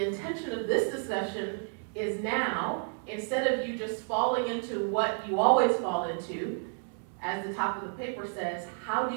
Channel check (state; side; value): silent; left; 57 dB below the other